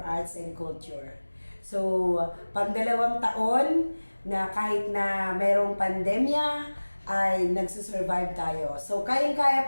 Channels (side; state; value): both; inverted; correlation -1.00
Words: and Culture. So, pang-2 taon na kahit na mayroong pandemya ay nagsusurvive tayo. So, kayang-kaya